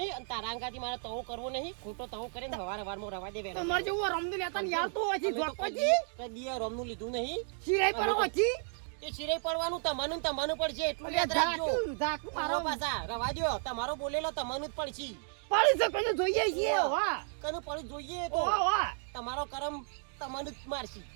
અને તારા અંગાથી મારે તવો કરવો નહીં ખોટો તવો કરીને હવારમાં રવા દે વેલા તમાર જેવું રમદુ લેતા ને યાર તો હજી જોકવાજી કદી રોમનું લીધું નહીં શીરાઈ પર હોજી એ શિરે પડવાનું તમને પડશે એટલું યાદ રાખજો ઝાક મારો પાછા રવા દ્યો તમારો બોલેલો તમને જ પડશે પડી છે કોઈને જોઈએ છીએ વાહ કનું પડી જોઈએ તો વાહ તમારો કરમ તમને જ મારશી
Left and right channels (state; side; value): silent; left; 56 dB below the other